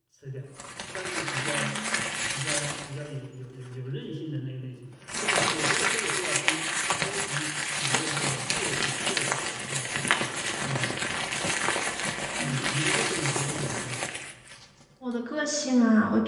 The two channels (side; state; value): both; identical; correlation 1.00